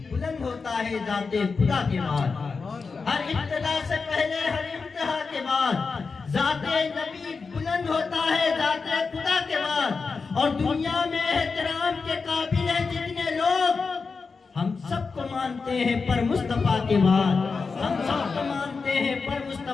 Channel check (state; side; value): quieter; right; 4.7 dB